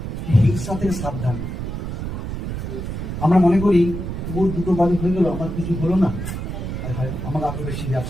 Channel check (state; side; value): noise; right; rumble, 5 dB below the sound